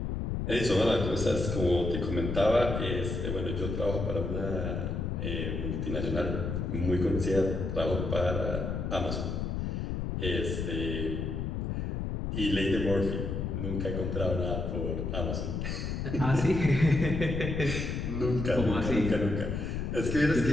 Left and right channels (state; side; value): noise; left; rumble, 2 dB below the sound